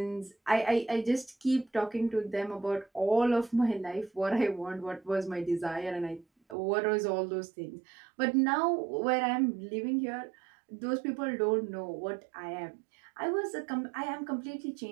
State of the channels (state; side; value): drops out; left; at 6.6 s